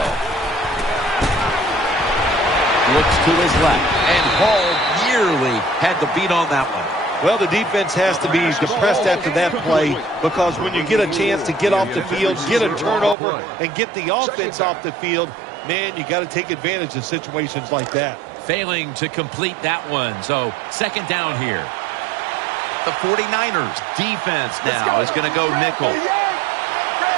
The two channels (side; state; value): left; drops out; at 13.2 s